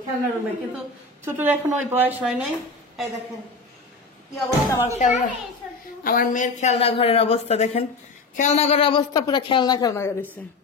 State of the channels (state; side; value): quieter; right; 3.6 dB